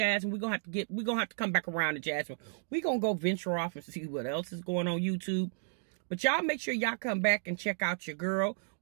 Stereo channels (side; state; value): left; silent; digital silence